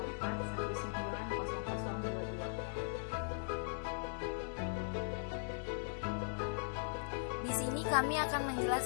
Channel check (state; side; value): silent; right; digital silence